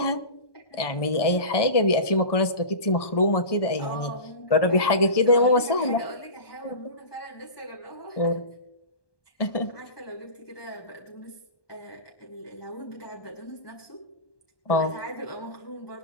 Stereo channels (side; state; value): right; late; 1.2 ms